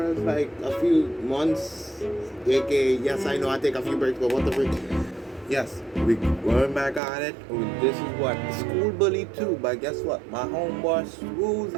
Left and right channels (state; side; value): drops out; left; at 7.0 s